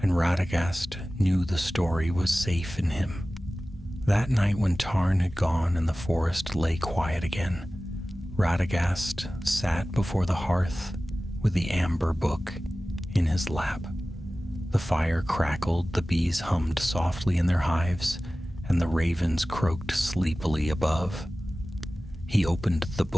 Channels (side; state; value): both; normal; correlation 0.96